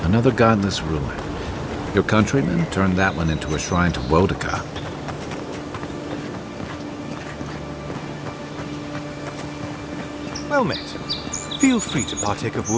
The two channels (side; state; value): both; identical; correlation 1.00